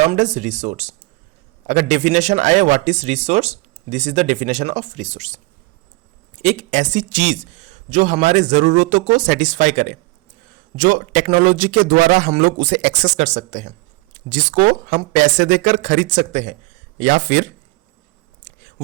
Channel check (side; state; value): left; quieter; 23.4 dB